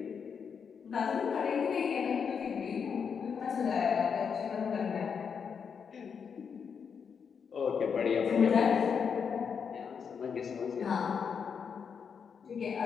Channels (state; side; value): quieter; right; 6.6 dB